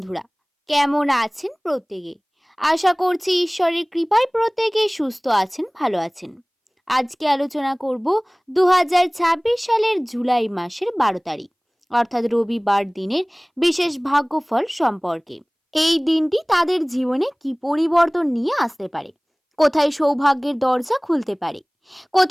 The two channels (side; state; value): both; identical; correlation 1.00